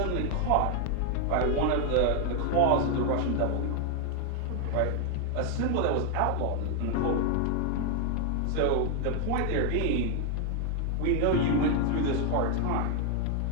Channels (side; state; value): both; different; correlation 0.00